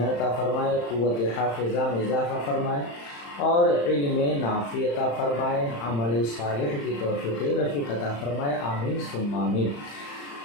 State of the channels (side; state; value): right; late; 35 ms